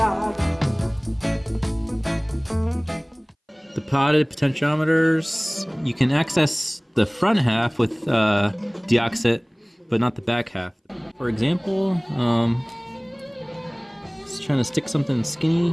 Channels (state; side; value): identical; both; correlation 1.00